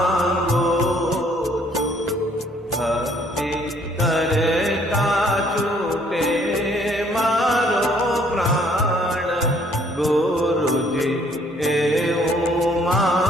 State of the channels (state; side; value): noise; right; hum, 30 dB below the sound